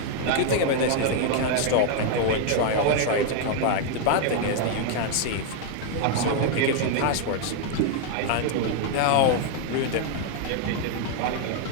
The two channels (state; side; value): different; both; correlation 0.00